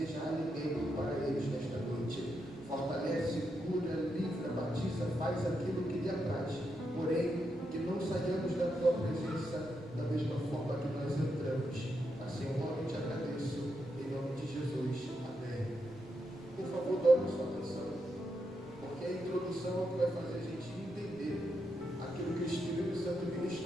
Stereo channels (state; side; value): noise; right; rumble, 23 dB below the sound